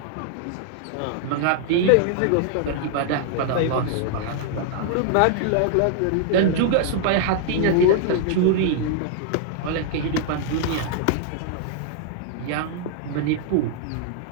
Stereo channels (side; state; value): both; different; correlation -0.01